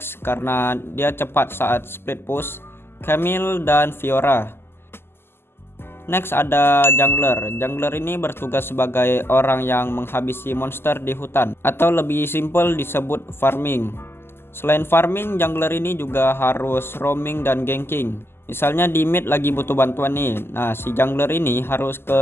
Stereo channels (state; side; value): late; right; 0.11 ms